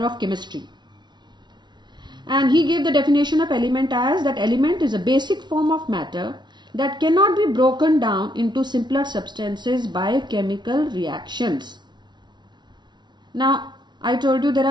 of chemistry. And he gave the definition of element as that element is a basic form of matter that cannot be broken down into simpler substances by chemical reactions. Now, I told you there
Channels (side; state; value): left; late; 0.21 ms